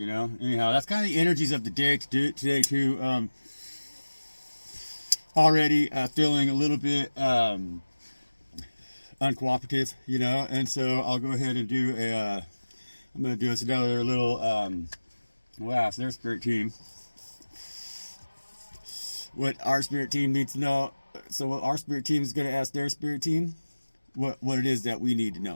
that's kind of the energies of the day today too. Already feeling a little bit uncooperative, and so I'll go ahead and do I'm going to do us another little, we'll ask their spirit team what our spirit team needs to know. So what our spirit team is going to ask their spirit team, what it is that we need to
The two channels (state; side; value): inverted; both; correlation -1.00